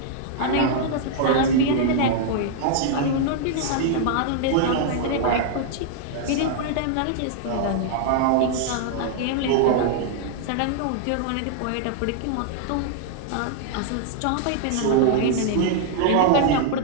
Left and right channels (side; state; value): both; different; correlation -0.01